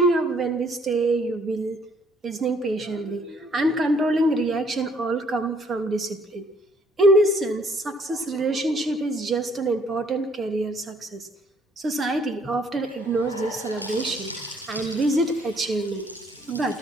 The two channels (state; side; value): normal; both; correlation 0.64